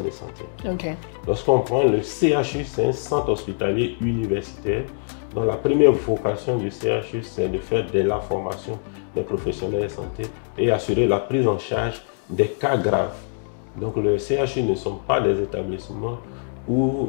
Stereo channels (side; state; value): right; silent; 63 dB below the other